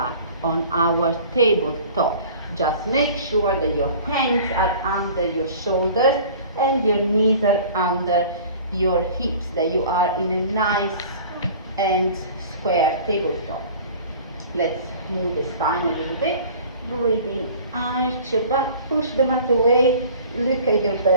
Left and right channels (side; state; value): both; inverted; correlation -0.45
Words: on our tabletop. Just make sure that your hands are under your shoulders and your knees are under your hips, that you are in a nice and square tabletop. Let's move the spine a little bit. Breathe in, arch your back, push the mat away, look at your